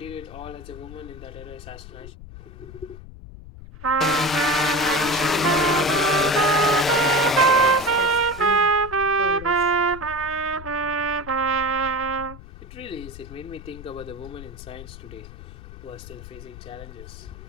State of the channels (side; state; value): left; noise; rumble, 15 dB below the sound